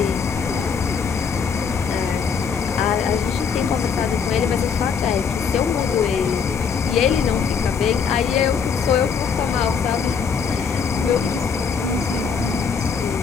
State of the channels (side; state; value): right; quieter; 6.2 dB